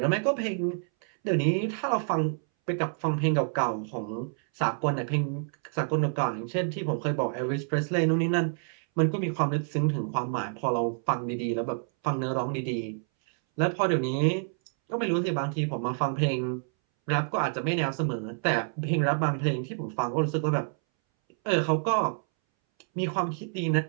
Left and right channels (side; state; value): left; silent; 59 dB below the other